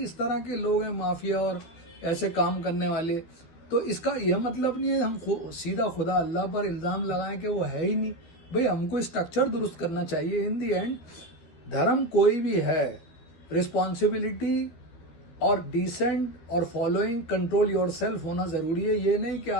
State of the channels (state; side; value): late; right; 13 ms